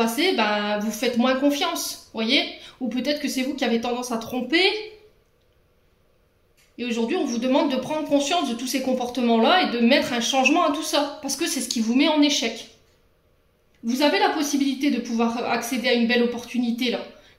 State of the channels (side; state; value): both; identical; correlation 1.00